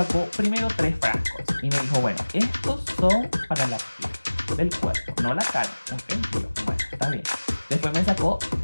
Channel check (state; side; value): inverted; both; correlation -1.00